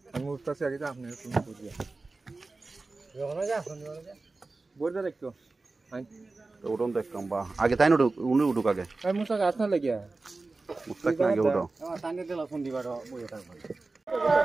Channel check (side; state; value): left; quieter; 3.5 dB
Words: আমি উঠতাছি আগে তো আপনি তুমি বুঝিয়া যখন যা শুনি বলতে দেখতো তো উঠুন তো একদম বা আগে তাই না উঠুক আগে এই মুসা গাছ না লাগিয়া মুস্তাক না আগে উঠো টানে দিলা ফোন দিবার বইয়া থাকবে